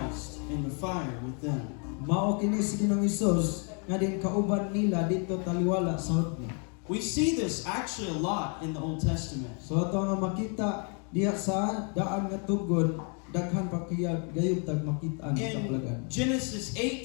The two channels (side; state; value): right; quieter; 39.3 dB